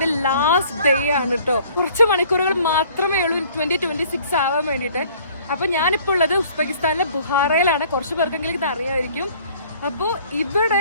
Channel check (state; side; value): inverted; both; correlation -0.55